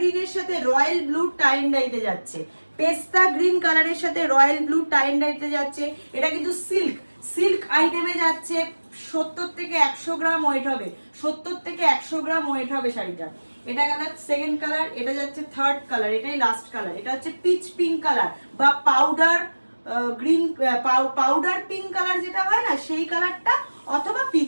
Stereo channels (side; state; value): both; inverted; correlation -1.00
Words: সাথে রয়্যাল ব্লু টাই অ্যান্ড ডাইতে যাচ্ছে, পেস্তা গ্রিন কালারের সাথে রয়্যাল ব্লু টাই অ্যান্ড ডাইতে যাচ্ছে। এটা কিন্তু সিল্ক, সিল্ক আইটেমে যাচ্ছে। 70 থেকে 100 গ্রাম ওয়েট হবে, 70 থেকে 100 গ্রাম ওয়েট হবে শাড়িটা। এটা গেল সেকেন্ড কালার, এটা যাচ্ছে থার্ড কালার, এটাই লাস্ট কালার। এটা হচ্ছে পিচ পিঙ্ক কালার বা powder green, powder pink colour যেটা হয় না সেই কালারটা, অথবা